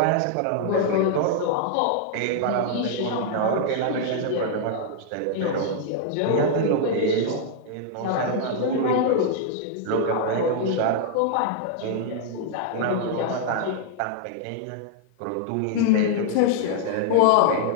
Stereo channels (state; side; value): different; both; correlation -0.01